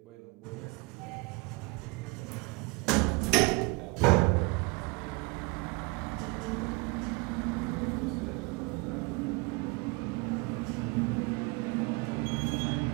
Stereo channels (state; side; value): quieter; left; 27.8 dB